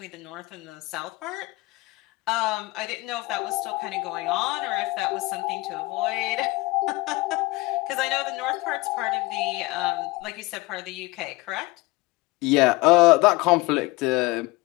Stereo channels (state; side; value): quieter; right; 22.4 dB